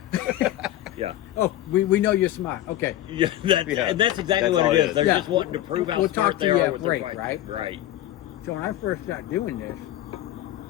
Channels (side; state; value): right; quieter; 13.9 dB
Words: Yeah. Oh, we know you're smart. Okay. Yeah, and that's exactly That's what all it it is. is. They're Yeah. just wanting to prove how We'll smart talk they to you are at with break, their right? Right. So when I first started doing this,